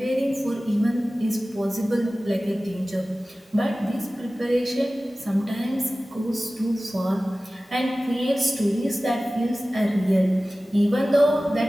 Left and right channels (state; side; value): normal; both; correlation 0.97